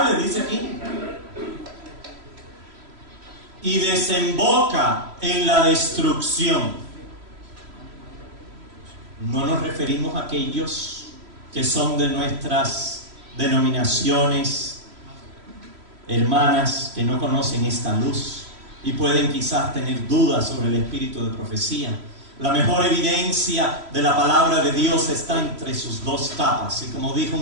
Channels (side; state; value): left; late; 3.0 ms